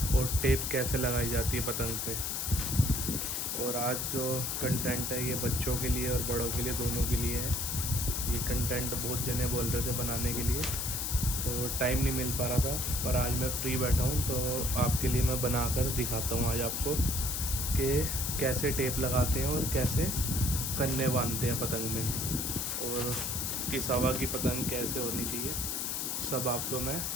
और टेप कैसे लगाई जाती है पतंग पे। और आज जो कंटेंट है ये बच्चों के लिए और बड़ों के लिए दोनों के लिए है। ये कंटेंट बहुत जने बोल रहे थे बनाने के लिए, तो टाइम नहीं मिल पा रहा था, पर आज मैं फ्री बैठा हूँ तो आपके लिए मैं बना कर दिखाता हूँ आज आपको कि कैसे टेप लगाते हैं और कैसे कन्ने बांधते हैं पतंग में, और किस हवा की पतंग कैसे होनी चाहिए, सब आपको मैं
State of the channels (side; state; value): left; noise; hiss, 1 dB below the sound